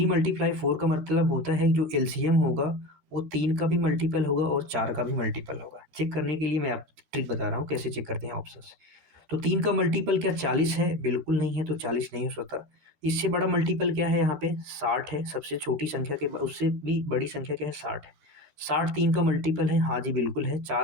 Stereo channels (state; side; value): late; left; 12 ms